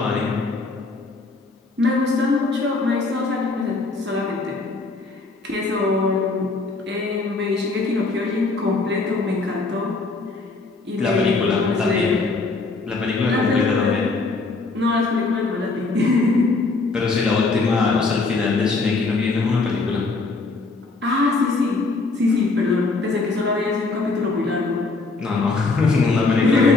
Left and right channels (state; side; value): quieter; right; 3.8 dB